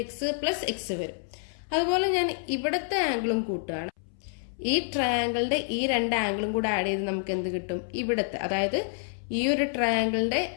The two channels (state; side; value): silent; right; 59 dB below the other